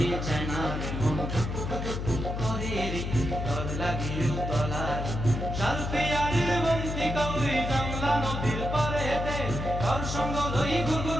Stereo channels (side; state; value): left; noise; hum, 4 dB below the sound